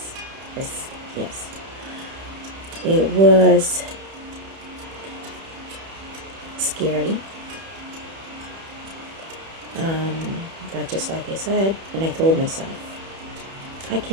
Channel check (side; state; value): left; late; 31 ms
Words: Yes, it was scary, but just like I said, and I told myself, I